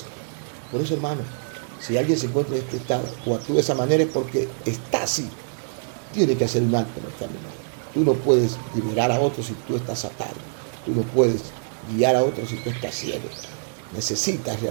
Por eso, hermano, si alguien se encuentra en este estado o actúa de esa manera es porque está así. Tiene que hacer un alto en el camino. Tú no puedes liberar a otros si tú estás atado. Tú no puedes guiar a otros si tú estás ciego. Necesitas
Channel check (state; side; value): silent; left; digital silence